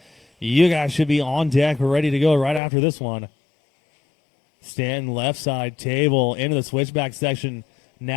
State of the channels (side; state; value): right; drops out; at 2.6 s